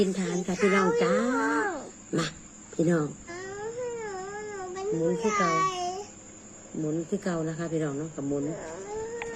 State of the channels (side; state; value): both; identical; correlation 1.00